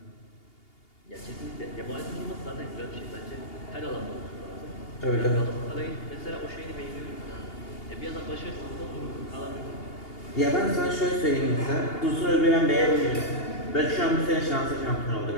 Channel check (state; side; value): late; right; 2.8 ms